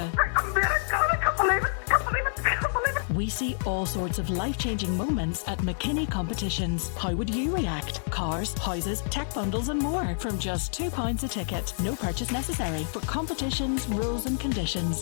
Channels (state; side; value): silent; right; digital silence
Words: I can't believe it. we see all sorts of life-changing moments at McKinney Competitions. How would you react? Cars, houses, tech bundles and more from just £2 a ticket. No purchase necessary. For competitions, rules and